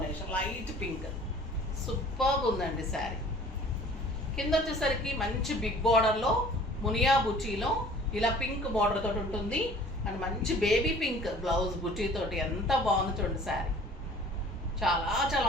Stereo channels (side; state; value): both; normal; correlation 0.49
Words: light pink. సూపర్గా ఉందండి శారీ. కింద వచ్చేసరికి మంచి బిగ్ బార్డర్లో మునియా బుచీలో ఇలా పింక్ బార్డర్ తోటి ఉంటుంది. అండ్ మంచి బేబీ పింక్ బ్లౌజ్ బుటీ తోటి ఎంత బాగుంది చూడండి శారీ. చాలా చాలా